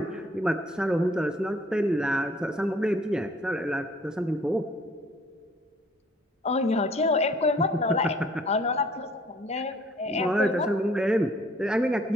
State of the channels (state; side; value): normal; both; correlation 0.58